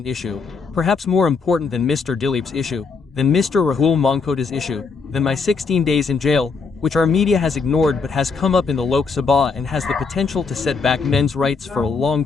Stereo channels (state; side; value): quieter; right; 4.9 dB